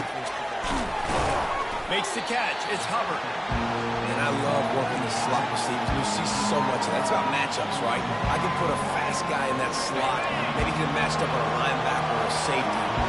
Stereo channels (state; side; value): identical; both; correlation 1.00